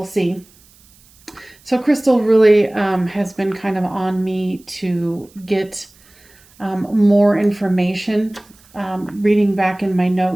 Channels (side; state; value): right; noise; hiss, 29 dB below the sound